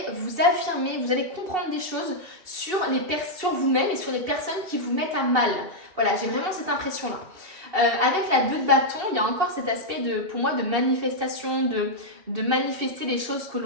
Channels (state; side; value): late; left; 2.7 ms